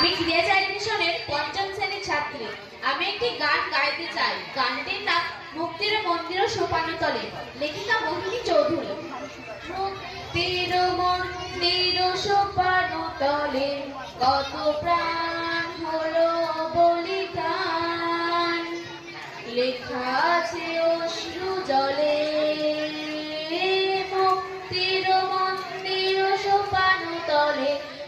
ক্রিয়াচারী মিশনের পঞ্চম শ্রেণীর ছাত্রী। আমি একটি গান গাইতে চাই। গানটির নাম মুক্তির মন্দির সোপানতলে, লেখিকা মোহিনী চৌধুরী। মুক্তির মন্দির সোপানতলে কত প্রাণ হলো বলিদান, লেখা আছে অশ্রু জলে। মুক্তির মন্দির সোপানতলে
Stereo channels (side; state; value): both; identical; correlation 1.00